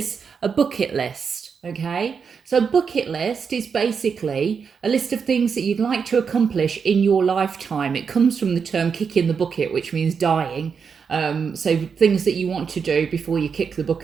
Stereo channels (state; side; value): quieter; left; 6.1 dB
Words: a bucket list. Okay, so a bucket list is basically a list of things that you'd like to accomplish in your lifetime. It comes from the term kicking the bucket, which means dying. So things that you want to do before you kick the